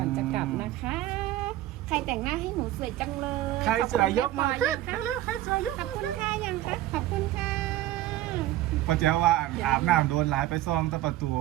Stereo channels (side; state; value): left; quieter; 14.5 dB